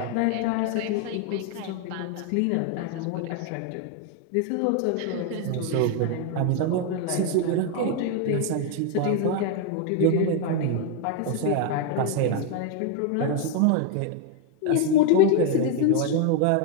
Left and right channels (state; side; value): different; both; correlation 0.01